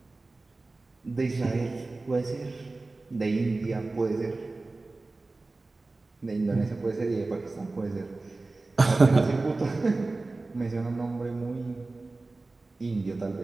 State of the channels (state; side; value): quieter; left; 3.3 dB